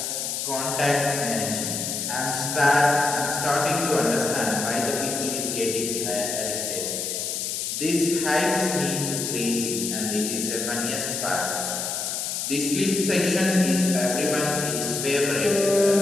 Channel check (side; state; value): left; noise; hiss, 3 dB below the sound